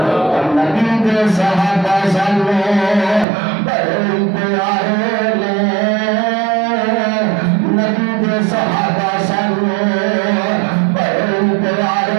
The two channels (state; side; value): drops out; left; at 3.2 s